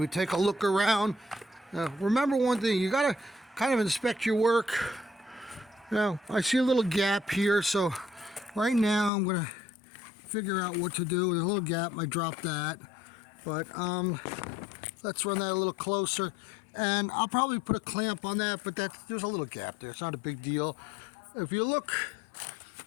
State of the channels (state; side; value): drops out; right; at 9.1 s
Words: take a look around. Remember one thing, you gotta kind of inspect your work. Now, I see a little gap here, so right now I'm gonna figure out what to do. There's a little gap, I dropped that, but let's run that a little closer, and I'll probably put a clamp on that, but there's a little gap there. It's not a big deal. If you look,